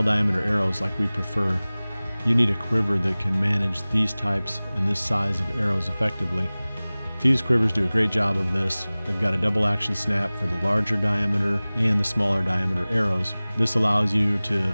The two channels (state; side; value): inverted; both; correlation -0.99